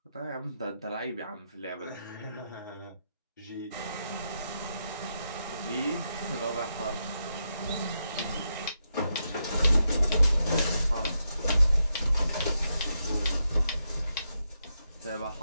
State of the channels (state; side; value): inverted; both; correlation -0.84